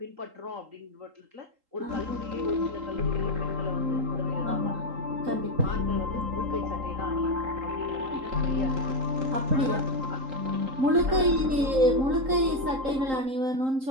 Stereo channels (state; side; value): late; left; 3.8 ms